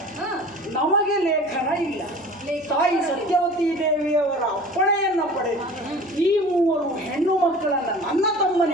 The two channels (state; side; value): noise; left; hum, 28 dB below the sound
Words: ನಮಗೆ ಲೇಖನ ಇಲ್ಲ. ತಾಯಿ ಸತ್ಯವತಿ ದೇವಿಯವರ ಅಪ್ಪಣೆಯನ್ನು ಪಡೆದು ಈ 3 ಹೆಣ್ಣು ಮಕ್ಕಳನ್ನು ನನ್ನ